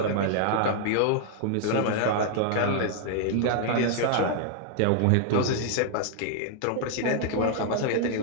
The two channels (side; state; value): both; different; correlation 0.00